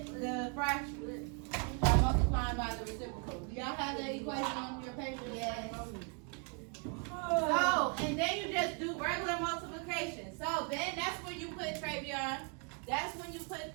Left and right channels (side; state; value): left; quieter; 36.7 dB